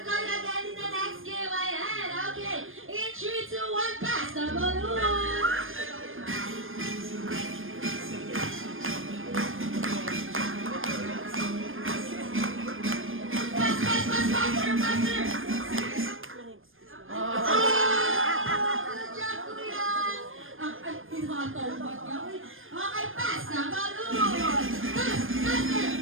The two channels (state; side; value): late; left; 0.59 ms